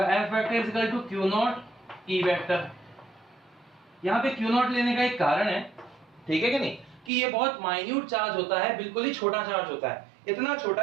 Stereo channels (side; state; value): left; drops out; at 7.1 s